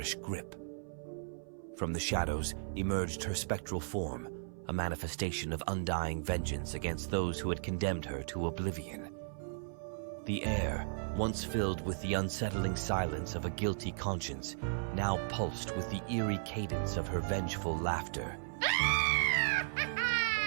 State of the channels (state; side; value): silent; left; 54 dB below the other